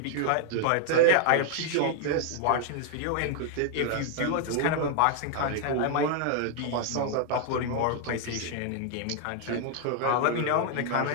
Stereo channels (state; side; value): different; both; correlation 0.00